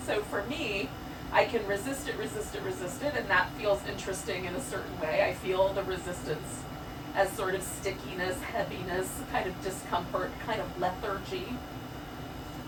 so for me, I can resist it, and that feels interesting in a certain way. I feel the resistance as sort of stickiness, heaviness, kind of discomfort, kind of lethargy.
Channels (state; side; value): identical; both; correlation 1.00